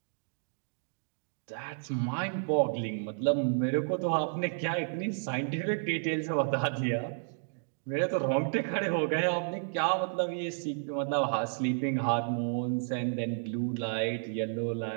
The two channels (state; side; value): silent; left; digital silence